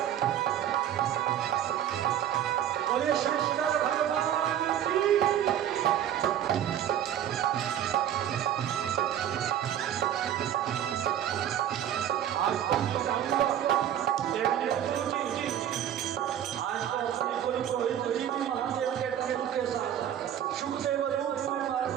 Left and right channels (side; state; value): left; quieter; 10.5 dB